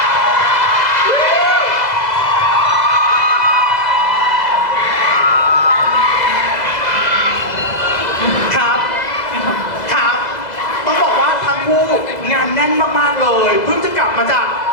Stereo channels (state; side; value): late; right; 2.0 ms